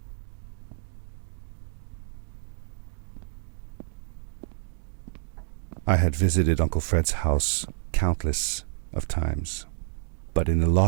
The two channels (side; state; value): left; silent; digital silence